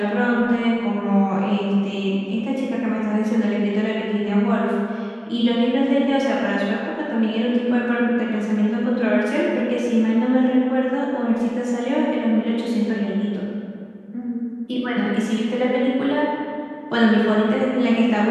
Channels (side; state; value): both; identical; correlation 1.00